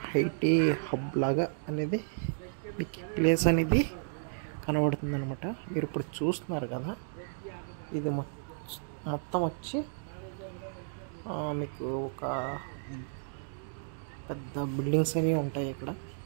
ఐటీ హబ్ లాగా అనేది మీకు ప్లేస్ అనేది కనబడుతుంది అనమాట. మీరు ఇప్పుడు చూస్తున్నారు కదా, ఇది మొత్తం వచ్చి మీకు ఒక పెద్ద బిల్డింగ్స్ అనేవి ఉంటాయి ఇక్కడ.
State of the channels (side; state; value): left; silent; digital silence